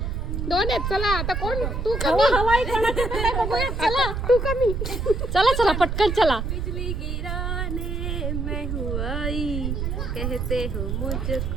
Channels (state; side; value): noise; right; rumble, 2 dB below the sound